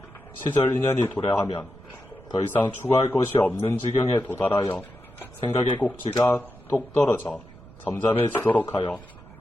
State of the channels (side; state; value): right; noise; rumble, 21 dB below the sound